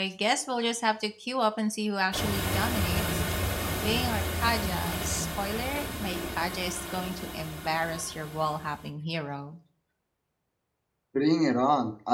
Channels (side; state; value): both; identical; correlation 1.00